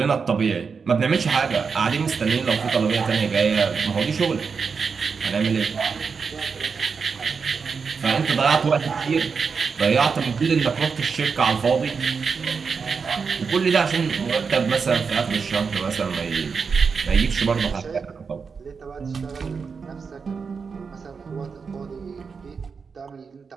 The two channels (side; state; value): left; quieter; 5.5 dB